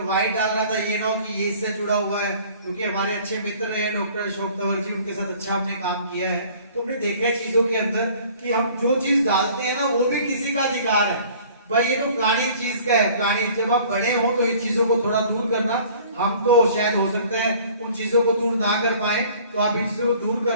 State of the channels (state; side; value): inverted; both; correlation -0.51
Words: व्हाइट डाल रहा था ये ना कि ये इससे जुड़ा हुआ है, क्योंकि हमारे अच्छे मित्र रहे डॉक्टर अशोक तंवर जी, उनके साथ अच्छा हमने काम किया है। तो हमने देखा है चीजों के अंदर कि हम जो चीज डालते हैं ना वो भी किसी का अधिकार है। भाई ये तो फलानी चीज का है, फलानी। जब आप बड़े हो तो इन चीजों को थोड़ा दूर करना। हम तो शायद हो सकता है उन चीजों को दूर ना कर पाए, तो आप इन चीजों को दूर